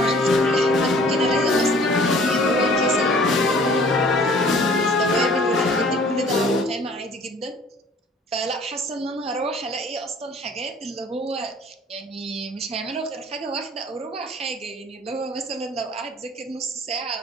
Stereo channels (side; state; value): both; normal; correlation 0.52